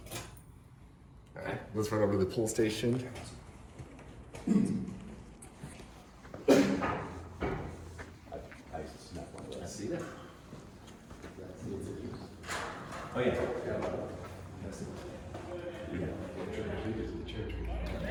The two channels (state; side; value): identical; both; correlation 1.00